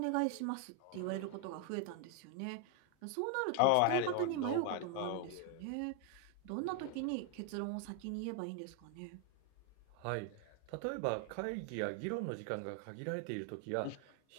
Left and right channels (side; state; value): both; different; correlation 0.00